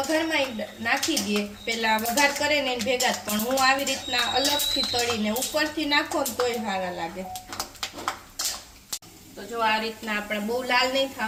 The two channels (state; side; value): identical; both; correlation 1.00